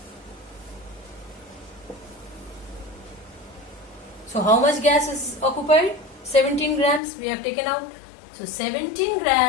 So how much gas is occupied? 17 grams we have taken out. So 17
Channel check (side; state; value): right; drops out; at 7.0 s